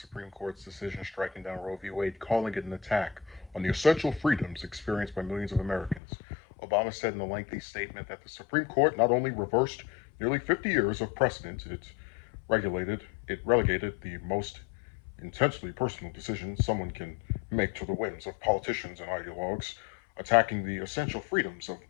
Court's decision striking down Roe v. Wade, calling it an attack on the essential freedoms experienced by millions of Americans. Obama said in a lengthy statement that the Supreme Court not only reversed nearly 50 years of precedent, it relegated the most intensely personal decisions someone can make to the whims of politicians and ideologues, attacking the essential freedoms of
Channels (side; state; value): right; drops out; at 6.0 s